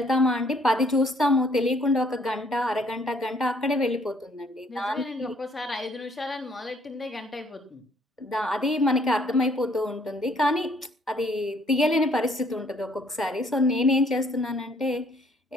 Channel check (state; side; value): normal; both; correlation 0.64